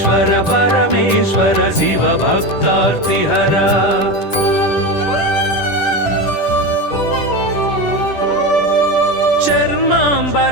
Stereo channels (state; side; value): late; right; 10 ms